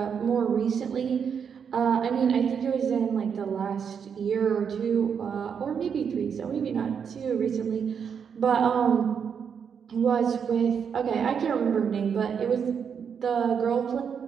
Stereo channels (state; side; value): quieter; left; 7.1 dB